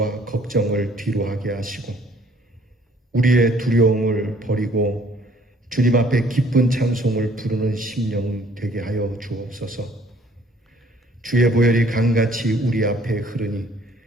걱정을 뒤로하게 하시고 우리의 두려움을 버리고 주님 앞에 기쁜 찬송을 부르는 심령 되게 하여 주옵소서. 주의 보혈이 강같이 우리 앞에 흐르니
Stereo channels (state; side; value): normal; both; correlation 0.59